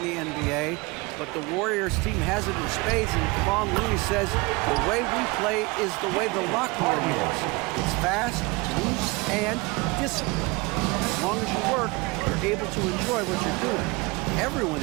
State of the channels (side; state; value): left; quieter; 25.1 dB